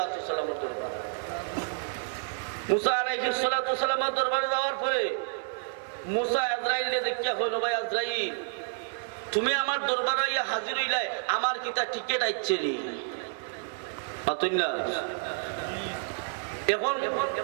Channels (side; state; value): left; silent; digital silence